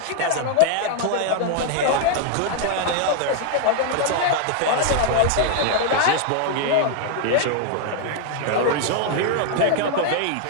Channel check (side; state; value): both; different; correlation 0.00